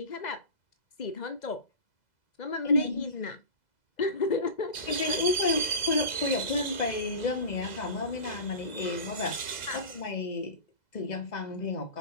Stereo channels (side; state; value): right; late; 2.0 ms